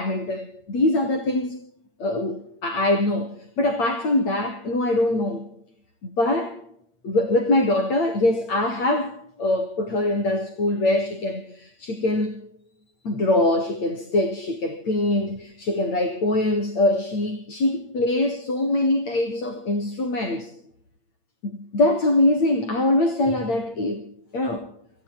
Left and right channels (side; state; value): right; late; 8.7 ms